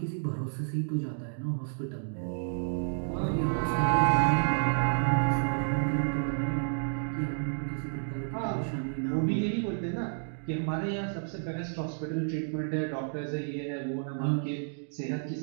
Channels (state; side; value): silent; left; digital silence